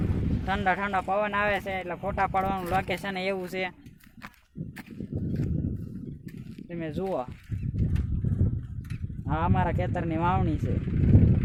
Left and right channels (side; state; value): both; identical; correlation 1.00